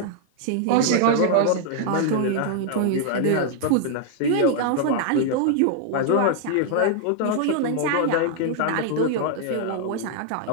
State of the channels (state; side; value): different; both; correlation -0.01